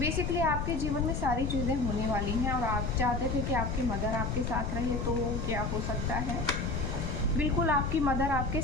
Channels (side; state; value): left; noise; rumble, 1 dB below the sound